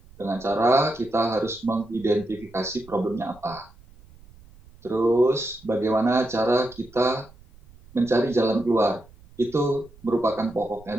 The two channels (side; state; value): right; noise; rumble, 24 dB below the sound